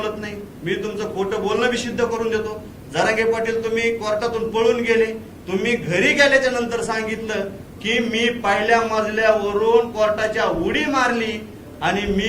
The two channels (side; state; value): both; identical; correlation 1.00